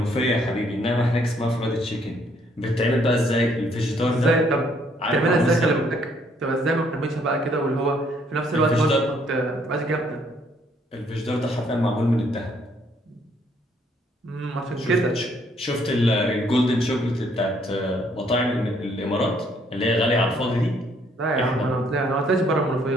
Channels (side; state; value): both; normal; correlation 0.67